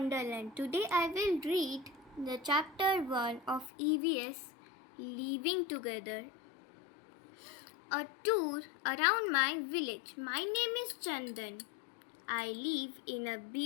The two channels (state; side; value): drops out; right; at 3.7 s